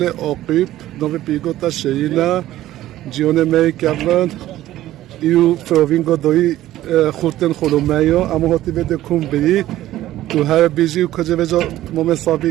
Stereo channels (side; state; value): left; quieter; 14.4 dB